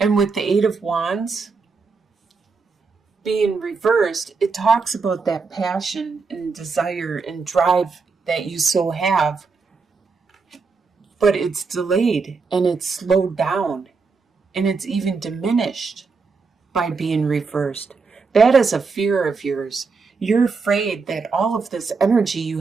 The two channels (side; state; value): left; quieter; 4.7 dB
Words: And with the Eight of Wands being reversed, it talks about that passion and desire and drive that you so have, but it's delayed and it's slowed down and it's even diminished by being reversed. That is a fear of yours. You're afraid that all of this energy you